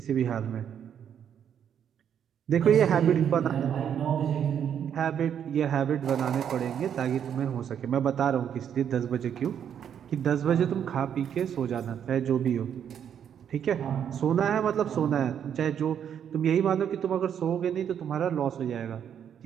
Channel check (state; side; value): quieter; left; 8.7 dB